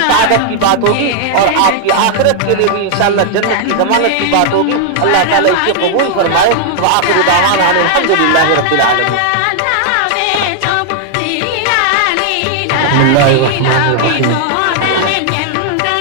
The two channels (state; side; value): different; both; correlation 0.00